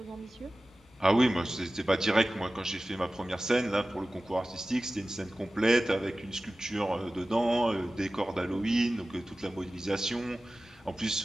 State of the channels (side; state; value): both; normal; correlation 0.96